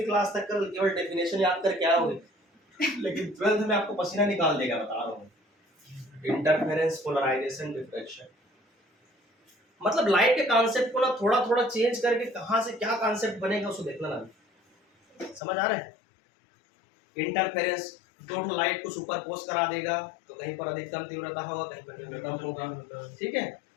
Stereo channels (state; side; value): drops out; right; at 15.4 s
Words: क्लास तक का केवल डेफिनेशन याद करके आओगे लेकिन 12th में आपको पसीना निकाल देगा, बता रहा हूँ। इंटरफेरेंस, पोलराइजेशन, डिफ्रैक्शन, मतलब लाइट के कॉन्सेप्ट को ना थोड़ा थोड़ा चेंज करके कहां से क्या कॉन्सेप्ट बनेगा उसको देखना ना। समझ आ रहा है। इंटरफेरेंस, दो लाइट को सुपरपोज करा देगा तो कहीं पर अधिकतम तीव्रता होगा, कहीं पर न्यूनतम होगा, ठीक है।